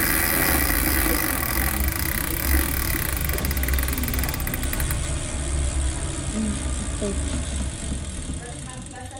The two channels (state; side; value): identical; both; correlation 1.00